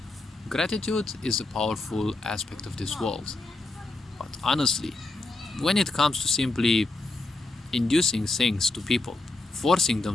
gratitude is a powerful aspect of this world. But honestly, when it comes to simply inducing things to people, forcing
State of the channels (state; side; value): quieter; right; 3.0 dB